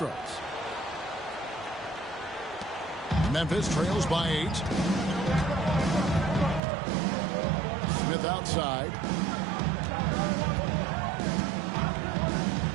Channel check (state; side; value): drops out; left; at 6.6 s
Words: Memphis trails by 8. Smith outside.